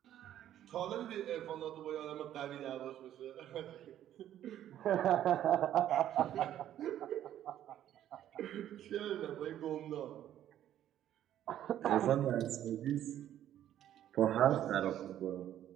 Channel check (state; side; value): quieter; left; 11.5 dB